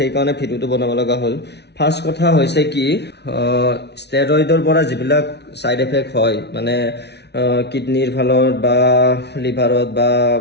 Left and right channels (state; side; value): late; right; 0.49 ms